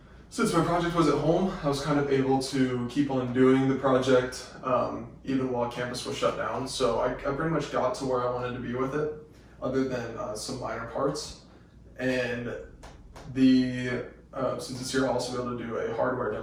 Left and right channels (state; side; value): identical; both; correlation 1.00